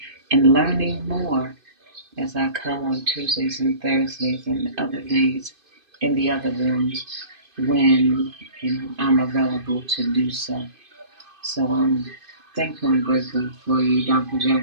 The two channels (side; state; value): left; late; 2.5 ms